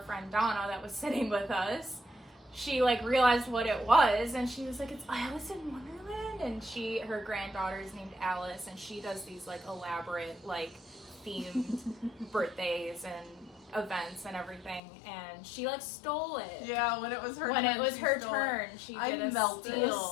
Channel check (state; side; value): drops out; right; at 14.8 s